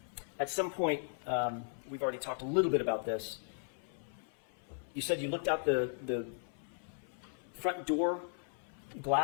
At some point, we've already talked a little bit about this. You said you looked out the front door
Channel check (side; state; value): right; silent; 53 dB below the other